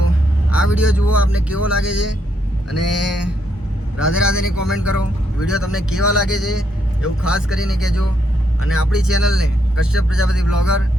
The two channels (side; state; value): both; normal; correlation 0.77